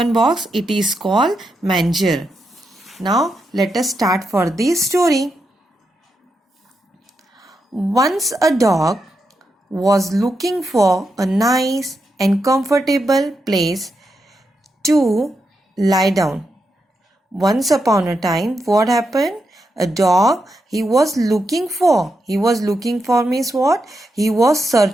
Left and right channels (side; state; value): both; normal; correlation 0.85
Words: box, it is called manger. Now let us start for the story. Once a dog was looking for a nice and comfortable place to lie down. Once upon a time, what happened? A dog he was looking for means what? He was